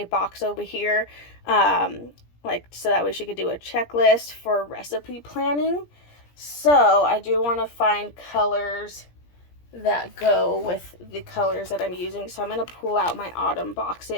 box over here, like so that way she could do a checklist for recipe planning. So I do want to find colors that go with the colors that I'm using. So I'm going to pull out my autumn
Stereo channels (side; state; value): right; late; 17 ms